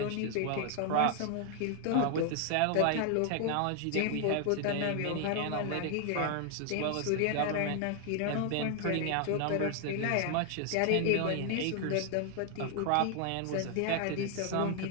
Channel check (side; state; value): both; different; correlation 0.00